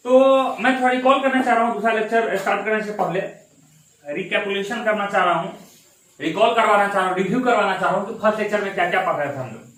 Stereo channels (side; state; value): both; identical; correlation 1.00